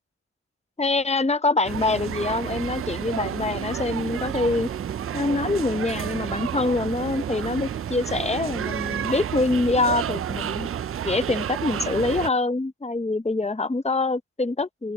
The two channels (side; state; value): both; normal; correlation 0.46